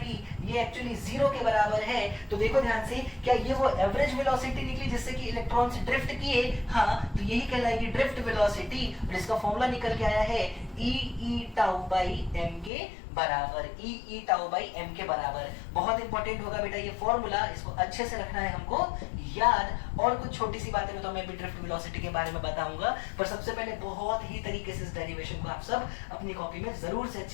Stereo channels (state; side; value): drops out; right; at 12.7 s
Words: ये एक्चुअली जीरो के बराबर है। तो देखो ध्यान से, क्या ये वो एवरेज वेलोसिटी निकली जिससे कि इलेक्ट्रॉन्स ड्रिफ्ट किए? हाँ, तो यही कहलाएगी ड्रिफ्ट वेलोसिटी। और इसका फॉर्मूला निकल के आया है ई टाउ बाई एम के बराबर, ई टाउ बाई एम के बराबर। बहुत इंपॉर्टेंट होगा बेटा ये फॉर्मूला, इसको अच्छे से रखना है हमको याद। और कुछ छोटी सी बातें तो मैं भी ड्रिफ्ट वेलोसिटी के बारे में बताऊंगा, पर सबसे पहले बहुत ही तरीके से इस डेरिवेशन को आप सब अपनी कॉपी में जरूर से